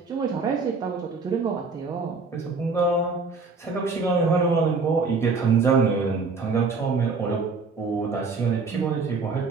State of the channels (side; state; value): left; quieter; 4.4 dB